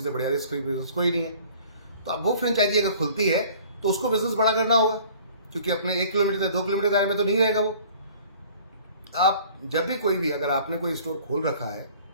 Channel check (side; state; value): both; inverted; correlation -0.50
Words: से बढ़िया रिस्क फ्री बिजनेस कोई नहीं है। तो अब वो फ्रेंचाइजी अगर खुलती है तो उसको बिजनेस बड़ा करना होगा, क्योंकि अपने 1 किलोमीटर 2 किलोमीटर दायरे में तो नहीं रहेगा वो। आप जब भी कोई भी, अगर आपने कोई स्टोर खोल रखा है,